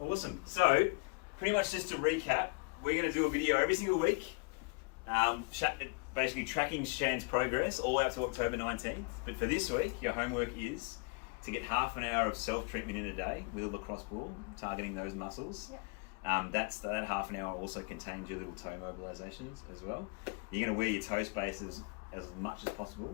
Awesome. So, pretty much just to recap, we're going to do a video every single week, basically tracking Shan's progress all out to October 19th. But for this week, your homework is to get half an hour of self-treatment in a day with a lacrosse ball, targeting those muscles. Yep. That half an hour also contains your little toe mobilizations as well. You're going to wear your toe spaces as much as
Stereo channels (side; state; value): right; quieter; 31.7 dB